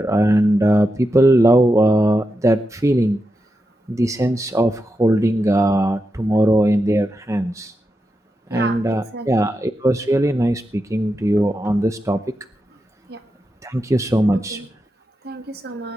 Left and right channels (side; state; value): both; normal; correlation 0.88